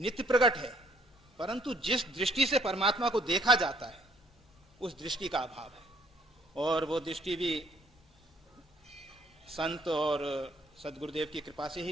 प्रकट है, परंतु जिस दृष्टि से परमात्मा को देखा जाता है उस दृष्टि का अभाव है। और वो दृष्टि भी संत और सद्गुरुदेव की कृपा से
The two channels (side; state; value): both; normal; correlation 0.63